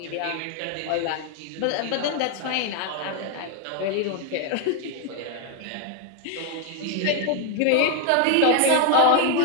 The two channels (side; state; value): both; different; correlation 0.01